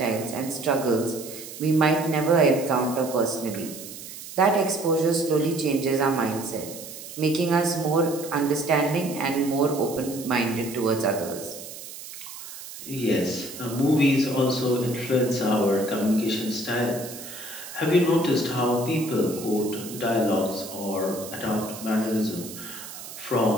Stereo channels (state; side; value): noise; right; hiss, 13 dB below the sound